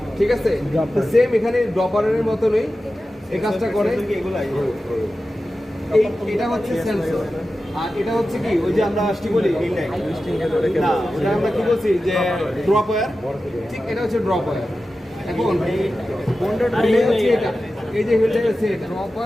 ঠিক আছে। সেম এখানে ড্রপারের মতনই এই কাজটা করে। এটা হচ্ছে সেন্সর আর এটা হচ্ছে কি ওই যে আমরা কি বলি না ওটা আমরা কি বলছি যে ড্রপ ওয়্যার, ঠিক এটা হচ্ছে ড্রপ ওয়্যার। এখন relay হচ্ছে এটা, এই যে হিলটা হচ্ছে এটা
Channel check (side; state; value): both; normal; correlation 0.93